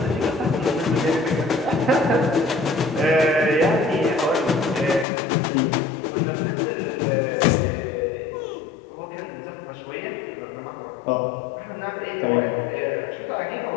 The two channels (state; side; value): drops out; right; at 5.1 s